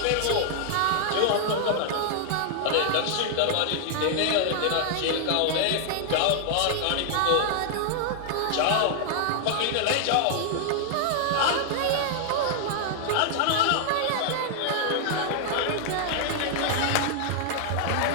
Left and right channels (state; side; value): different; both; correlation 0.00